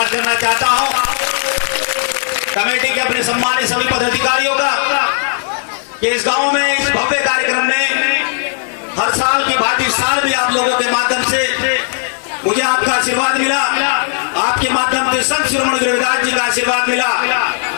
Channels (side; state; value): right; silent; digital silence